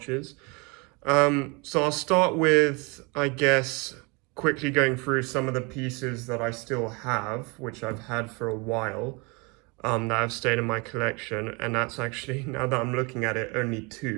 So I'll start with, I guess, quickly going through some of the pieces that I still have, which I've had for a while, that have stayed in my collection, and that's actually, now that I'm looking at it, only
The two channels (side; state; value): left; quieter; 29.0 dB